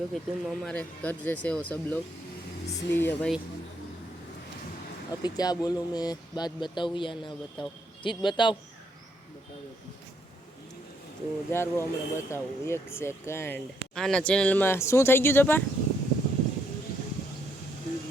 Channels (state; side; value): normal; both; correlation 0.74